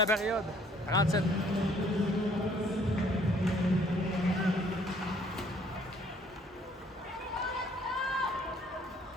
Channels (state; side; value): normal; both; correlation 0.61